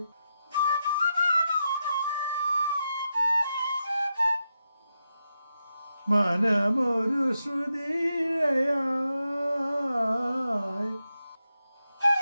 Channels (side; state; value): both; inverted; correlation -0.87